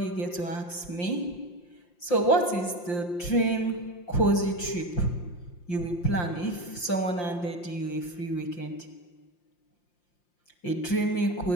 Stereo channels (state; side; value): late; right; 5.7 ms